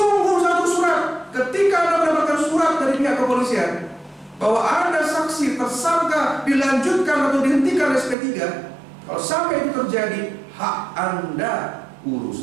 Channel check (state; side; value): drops out; left; at 8.2 s